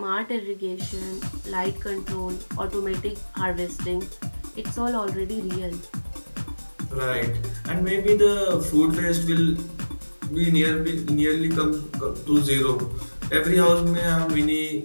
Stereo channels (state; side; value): inverted; both; correlation -1.00